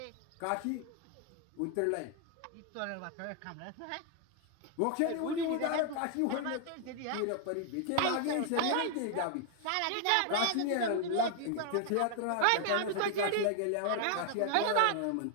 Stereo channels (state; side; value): different; both; correlation 0.00